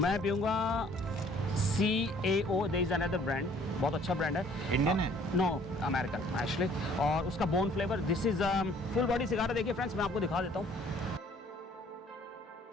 पीऊँगा CAO, there is another brand, बहुत अच्छा ब्रांड है। इंडियन है? नो, अमेरिकन एक्चुअली, और उसका bone flavour. This is full body cigar है। देखिए फ्रेंड्स, मैं आपको दिखा देता हूँ।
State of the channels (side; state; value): both; normal; correlation 0.57